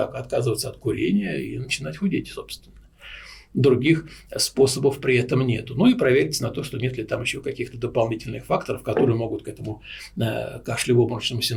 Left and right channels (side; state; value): both; identical; correlation 1.00